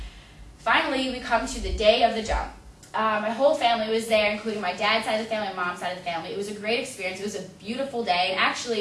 finally we come to the day of the jump. My whole family was there, including my dad's side of the family, my mom's side of the family. It was a great experience. It was a beautiful day, and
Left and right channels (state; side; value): identical; both; correlation 1.00